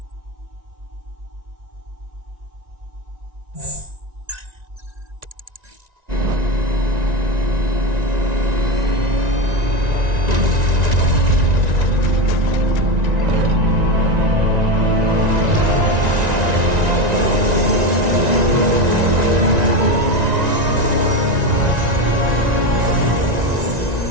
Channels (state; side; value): late; left; 1.9 ms